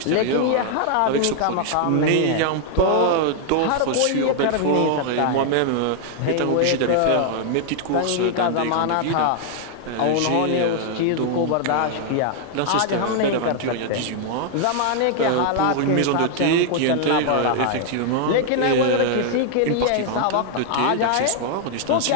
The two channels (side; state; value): both; different; correlation 0.00